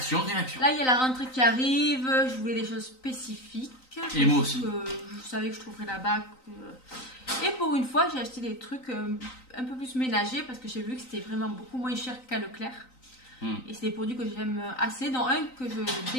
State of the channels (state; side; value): late; right; 3.9 ms